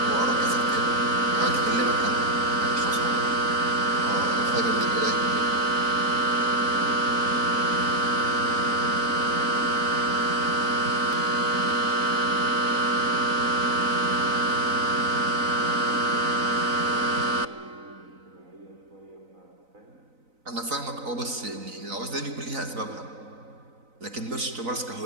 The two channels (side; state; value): left; late; 3.9 ms